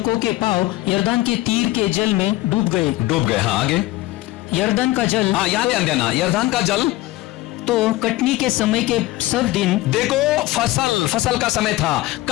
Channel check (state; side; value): quieter; right; 18.0 dB